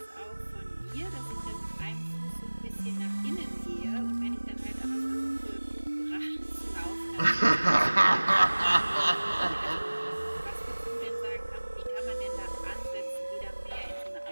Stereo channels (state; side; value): inverted; both; correlation -1.00